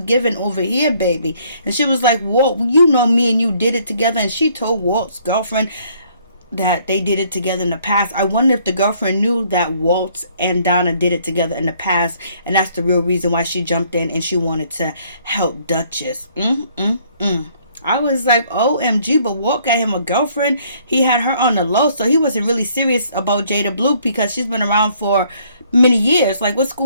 over here, baby. And she was like, Walt, you know me and you did it together. And she told Walt's girlfriend that they did it together in the past. I wonder if the girlfriend knew that Walt and Donna did it together in the past, and that's the real reason why she jumped in and she wanted to help Duchess. I was like, OMG, but Walt got him a girlfriend. He had her on the low, so he wasn't really serious about Jada Blue because she's been around for many years. Like, what's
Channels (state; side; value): inverted; both; correlation -0.63